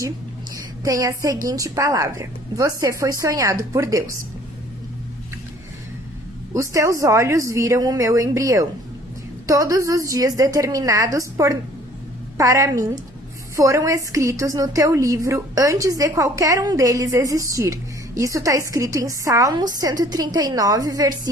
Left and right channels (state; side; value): normal; both; correlation 0.55